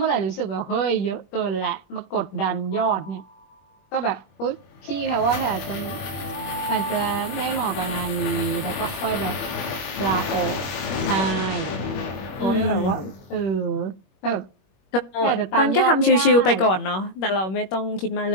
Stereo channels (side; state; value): right; late; 21 ms